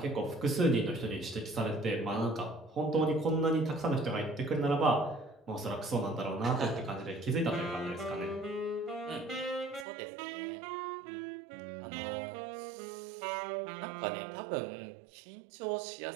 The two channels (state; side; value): drops out; left; at 9.9 s